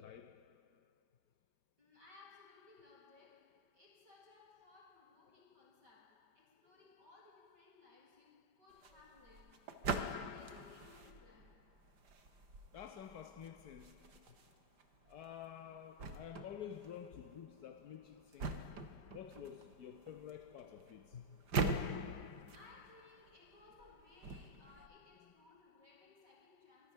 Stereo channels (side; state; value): left; late; 5.0 ms